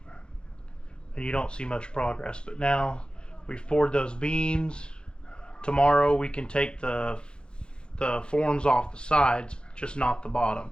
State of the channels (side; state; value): right; late; 0.051 ms